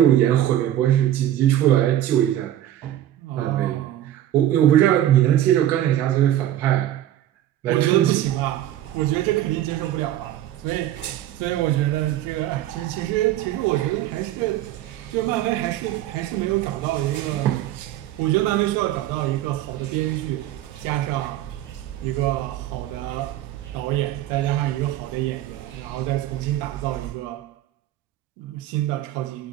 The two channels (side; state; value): left; quieter; 12.6 dB